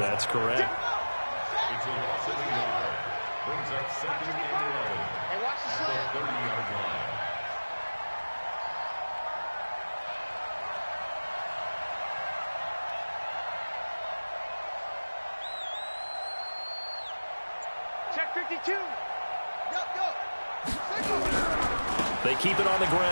That's correct. It's a loss of a yard. Brings up 2nd and 11. Hey, watch the At the slant. 30-yard line. Check 52. Go. They keep it on the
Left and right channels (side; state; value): both; inverted; correlation -1.00